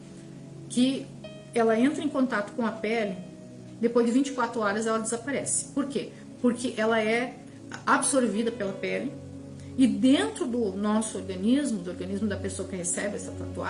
que ela entra em contato com a pele, depois de 24 horas ela desaparece. Por quê? Porque ela é absorvida pela pele e dentro do nosso organismo, do organismo da pessoa que recebe essa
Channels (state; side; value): identical; both; correlation 1.00